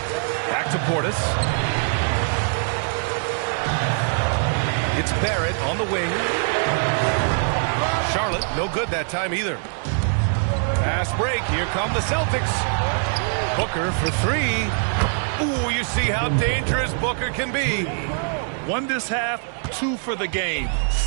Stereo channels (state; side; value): silent; left; 58 dB below the other